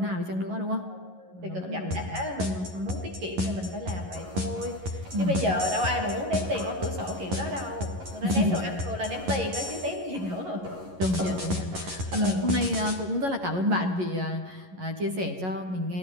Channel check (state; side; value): late; left; 11 ms